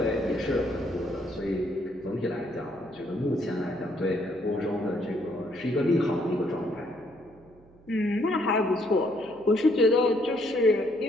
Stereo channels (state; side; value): noise; right; hum, 27 dB below the sound